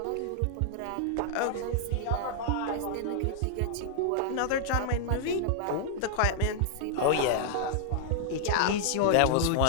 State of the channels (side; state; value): both; different; correlation -0.01